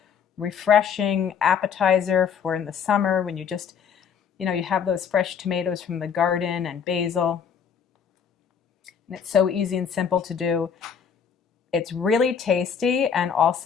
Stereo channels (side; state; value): right; quieter; 7.2 dB